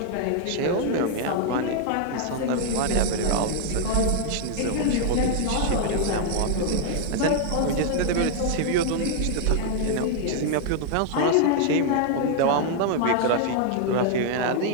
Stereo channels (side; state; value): both; different; correlation 0.00